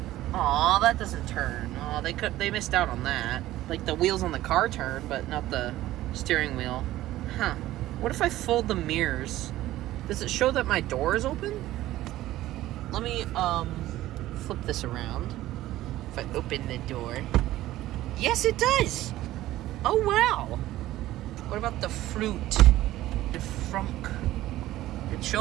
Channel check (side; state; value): left; quieter; 15.2 dB